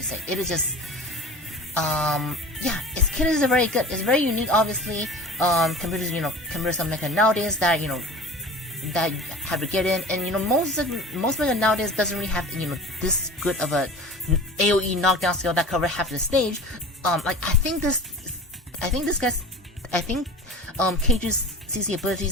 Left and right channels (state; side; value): normal; both; correlation 0.38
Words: say, it is just its kit is very good. It's very unique, obviously, compared to some mecha nowadays that that have to get in, and most mecha nowadays doesn't really have this good of a AOE knockdown skill that cover half the stage. I think Cage's CC